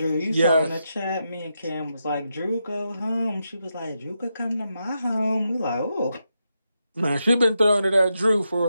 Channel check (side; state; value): both; inverted; correlation -0.85